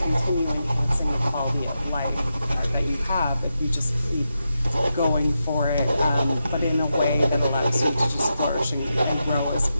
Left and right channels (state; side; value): inverted; both; correlation -0.88